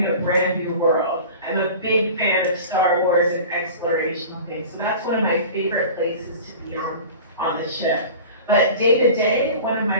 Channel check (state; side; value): inverted; both; correlation -0.38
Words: a brand new world. I'm a big fan of Star Wars and exploration. Okay, so that's one of my favorite places to be on the ship. But day to day, one of